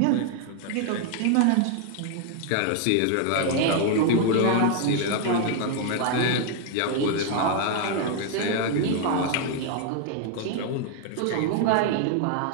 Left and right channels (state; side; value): different; both; correlation 0.00